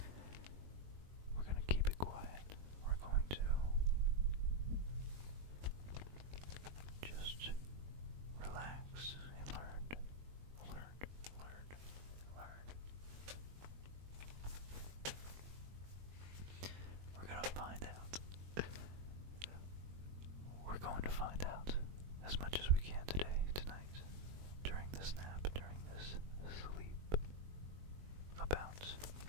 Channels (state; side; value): late; left; 21 ms